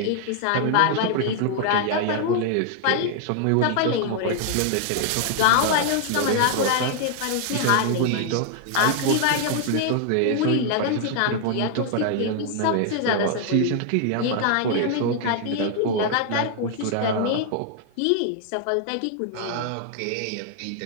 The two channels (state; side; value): different; both; correlation 0.00